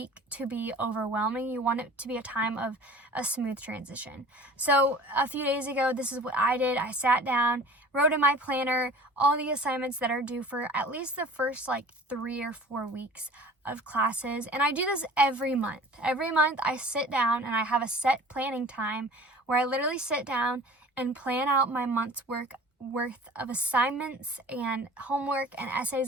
to be overwhelming. You want it to be a time of a smooth transition. So a few days ago, this is what I did. I sat down, wrote in my planner all the assignments that are due for at least the first 3 or 4 weeks of classes. And I do this every month. Every month I sit down and I have a set planning time where I literally sit down and plan out my month's work worth of assignments and homework and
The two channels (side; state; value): both; normal; correlation 0.44